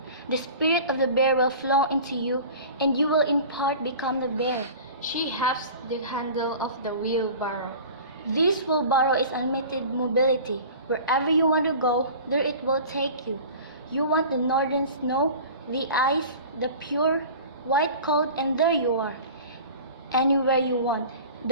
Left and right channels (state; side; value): inverted; both; correlation -0.40